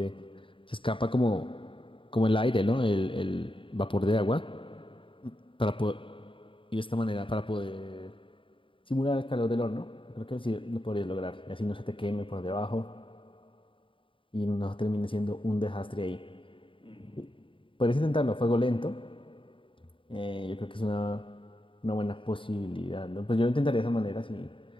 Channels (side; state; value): right; late; 0.25 ms